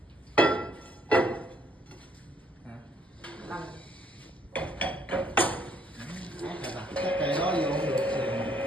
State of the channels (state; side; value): normal; both; correlation 0.67